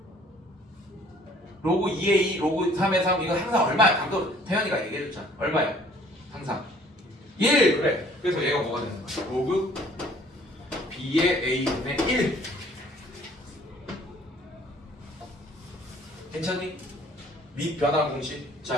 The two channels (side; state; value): both; normal; correlation 0.56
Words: 로그 2의 2, 로그 3의 3 이거 항상 얼마야? 방금 태연이가 얘기해줬잖아. 얼마야? 항상 1 그래. 그래서 얘가 뭐가 되는 거야? 로그 B의 A분의 1 괜찮니? 밑 변환 공식.